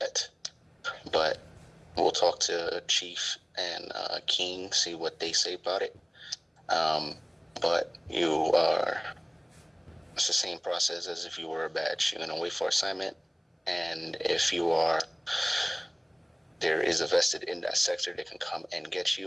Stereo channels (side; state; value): both; identical; correlation 1.00